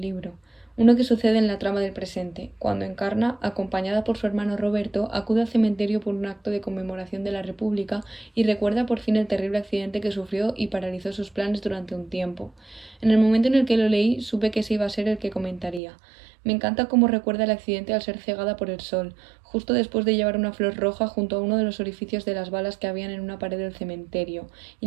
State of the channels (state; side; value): drops out; left; at 15.8 s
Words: libro, uno que sucede en la trama del presente, cuando Encarna, acompañada por su hermano Roberto, acude al cementerio por un acto de conmemoración de la República y recuerda por fin el terrible accidente que sufrió y paralizó sus planes durante un tiempo. En el momento en el que lo leí, supe que ese iba a ser el que comentaría. Me encanta cómo recuerda el accidente al ser cegada por el sol, justo después de llevar una flor roja junto a uno de los orificios de las balas que habían en una pared del cementerio,